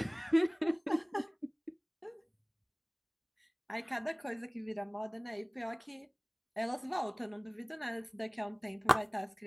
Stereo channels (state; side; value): identical; both; correlation 1.00